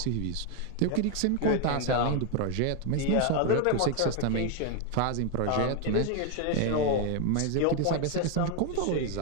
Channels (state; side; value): different; both; correlation 0.01